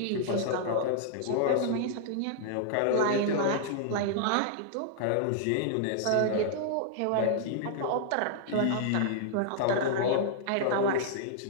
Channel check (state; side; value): different; both; correlation -0.01